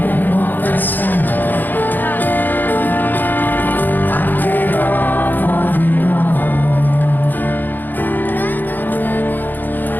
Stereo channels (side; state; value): right; late; 0.088 ms